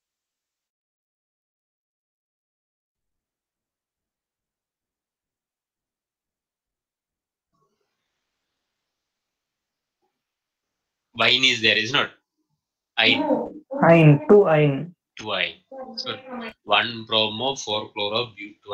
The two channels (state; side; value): identical; both; correlation 1.00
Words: wine is there, is not? Ine, Ine, 2 ine. 2 ine. So 1 bromo, 4 chloro,